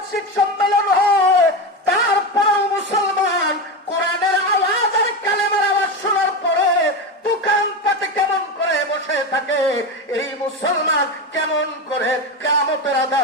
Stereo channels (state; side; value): normal; both; correlation 0.18